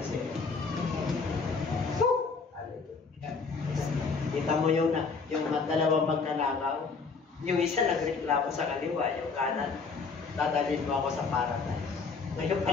say, kita mo yung dalawang magkanakaw, yung isa nagreklamo sa kaliwa, yung kanan, dadalhin mo ako sa paradise. Ngayon pa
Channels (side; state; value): right; quieter; 4.8 dB